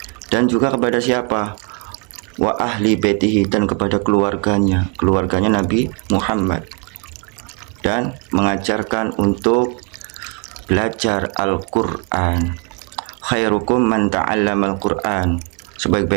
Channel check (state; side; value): quieter; left; 34.4 dB